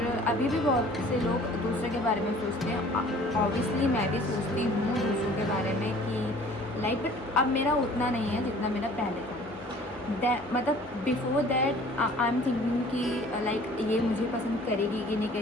अभी भी बहुत से लोग दूसरों के बारे में सोचते हैं। ऑब्वियसली मैं भी सोचती हूँ दूसरों के बारे में कि लाइक, बट अब मेरा उतना नहीं है जितना मेरा पहले था। मतलब before that I am thinking कि लाइक ये मुझे पसंद करेगी कि नहीं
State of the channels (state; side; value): normal; both; correlation 0.50